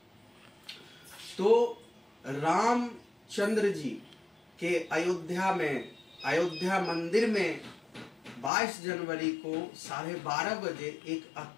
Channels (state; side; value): drops out; right; at 8.5 s